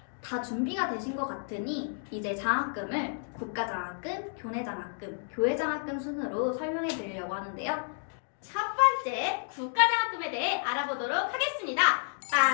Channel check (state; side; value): silent; right; digital silence